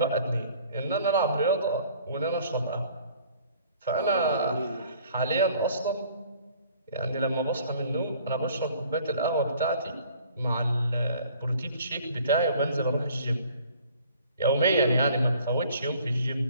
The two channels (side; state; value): both; inverted; correlation -0.54